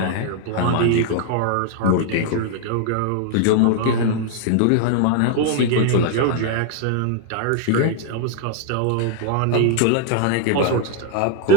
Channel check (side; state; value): both; different; correlation 0.00